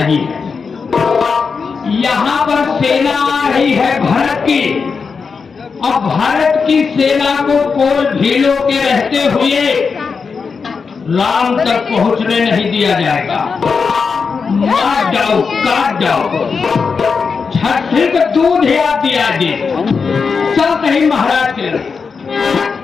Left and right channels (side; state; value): right; quieter; 5.3 dB